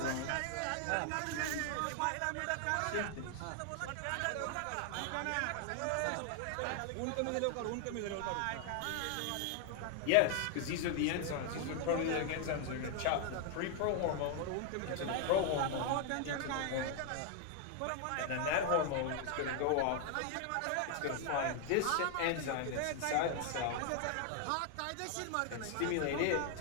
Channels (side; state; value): both; different; correlation 0.00